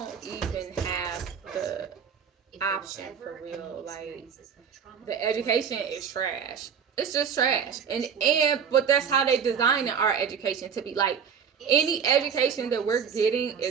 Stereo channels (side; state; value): left; quieter; 7.0 dB